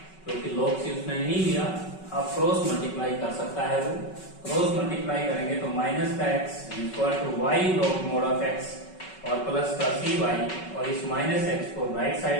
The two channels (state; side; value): late; right; 5.3 ms